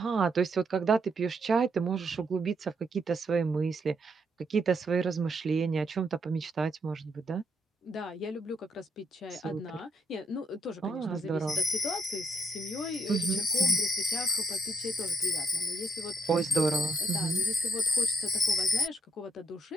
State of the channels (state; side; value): normal; both; correlation 0.75